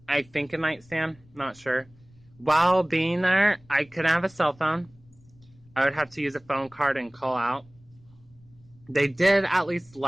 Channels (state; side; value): noise; left; rumble, 28 dB below the sound